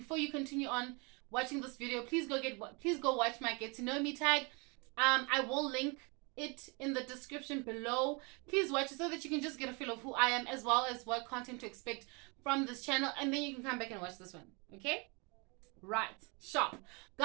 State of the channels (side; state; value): left; quieter; 30.6 dB